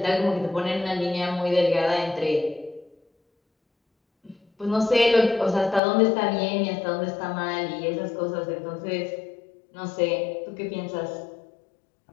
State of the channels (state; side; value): drops out; right; at 5.8 s